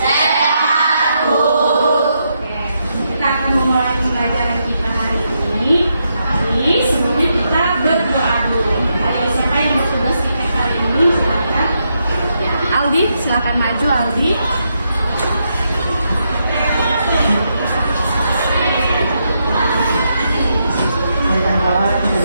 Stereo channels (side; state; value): both; inverted; correlation -0.81